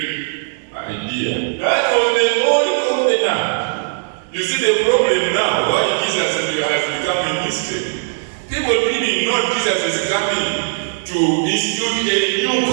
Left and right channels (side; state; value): left; silent; 67 dB below the other